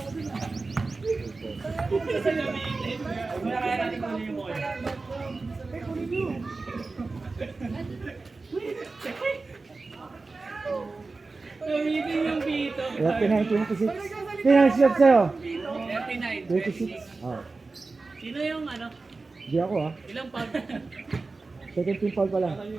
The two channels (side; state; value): left; quieter; 3.8 dB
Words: Kaya natin kung ano yung ball. Gamitin yung pito. 39-26. Pinag-shot sa'yo. 39. 26. Oh. Sino yung ano? Di ako ha. Ilang pag? Second team foul pa lang.